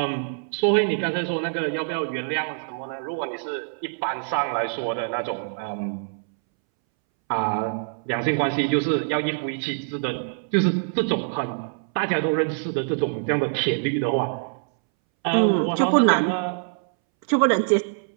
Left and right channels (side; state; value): left; silent; 62 dB below the other